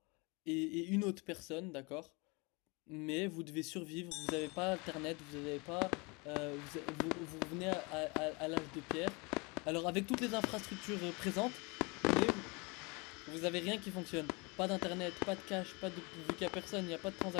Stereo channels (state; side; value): quieter; right; 28.3 dB